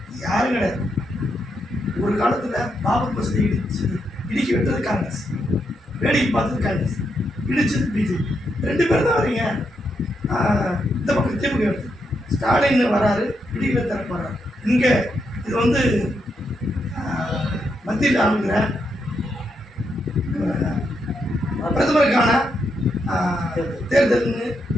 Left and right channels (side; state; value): both; normal; correlation 0.81